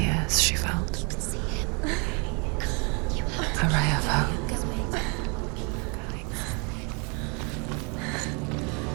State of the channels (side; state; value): left; quieter; 33.8 dB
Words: years, she felt a ray of hope.